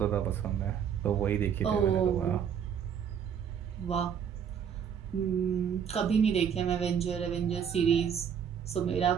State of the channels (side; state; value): left; quieter; 7.9 dB